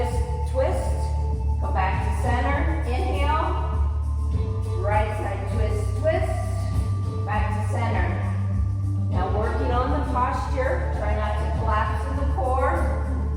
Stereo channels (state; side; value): identical; both; correlation 1.00